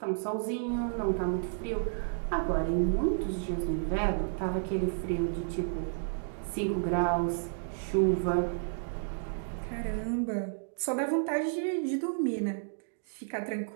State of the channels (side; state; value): left; silent; digital silence